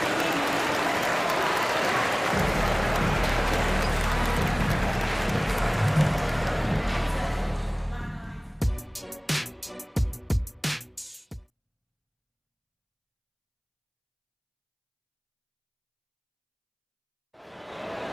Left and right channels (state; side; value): identical; both; correlation 1.00